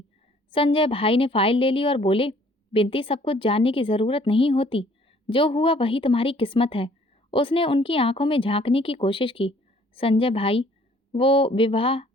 संजय भाई ने फाइल ले ली और बोले, बिंती, सब कुछ जानने की जरूरत नहीं होती। जो हुआ वही तुम्हारी किस्मत है। उसने उनकी आंखों में झांकने की कोशिश की। संजय भाई, वो विवाह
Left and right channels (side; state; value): both; normal; correlation 0.58